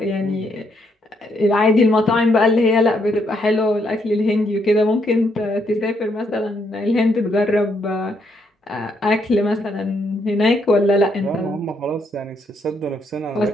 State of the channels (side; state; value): both; normal; correlation 0.75